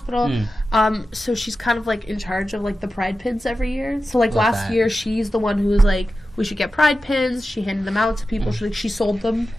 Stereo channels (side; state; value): both; normal; correlation 0.93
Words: So she's kind of, like, in charge of, like, the pride pins every year. So, like, Love last that. year, she's the one who was like, we should get pride pins. She handed them out to people. She sold them